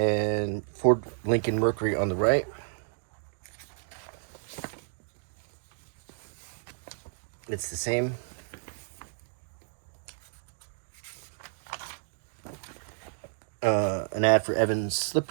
Ford Lincoln Mercury on the right. It's the same. An ad for Evans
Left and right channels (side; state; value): left; silent; digital silence